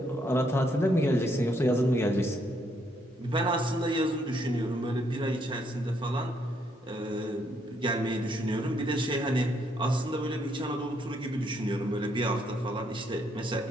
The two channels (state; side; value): normal; both; correlation 0.73